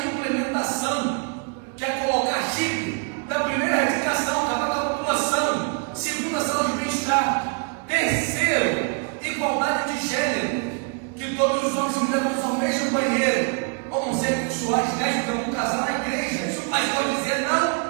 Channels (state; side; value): quieter; left; 36.7 dB